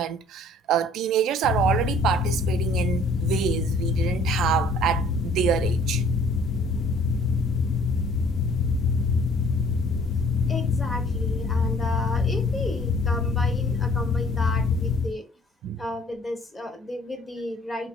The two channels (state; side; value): normal; both; correlation 0.56